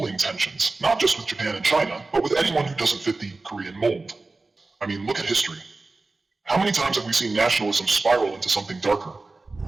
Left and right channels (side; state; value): left; quieter; 3.4 dB